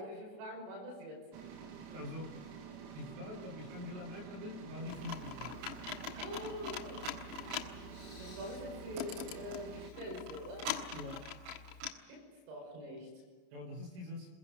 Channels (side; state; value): left; late; 33 ms